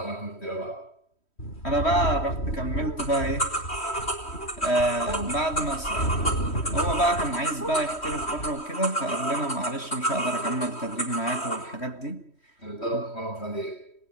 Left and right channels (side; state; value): right; late; 3.1 ms